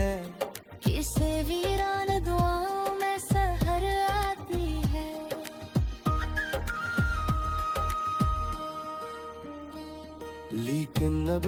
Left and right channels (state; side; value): identical; both; correlation 1.00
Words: किसे वीरान दुआओं में सहर आती है। लेकिन अब